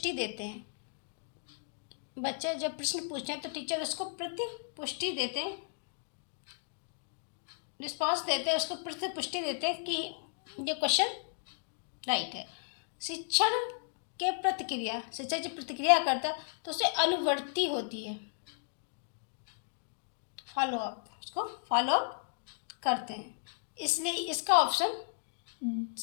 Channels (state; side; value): silent; right; digital silence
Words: देते हैं। बच्चे जब प्रश्न पूछते हैं तो टीचर उसको प्रतिपुष्टि देते हैं, रिस्पॉन्स देते हैं, उसको प्रतिपुष्टि देते हैं कि ये क्वेश्चन राइट है। शिक्षण के प्रतिक्रिया, शिक्षक जब प्रतिक्रिया करता है तो उसे अनुवर्ती होती है, फॉलो अप, उसको फॉलो अप करते हैं। इसलिए इसका ऑप्शन